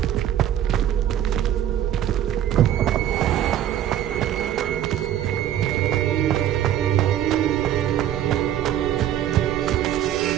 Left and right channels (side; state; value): left; quieter; 11.2 dB